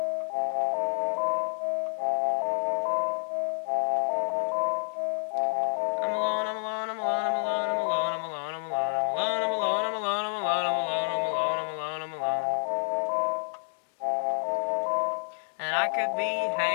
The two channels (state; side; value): silent; right; digital silence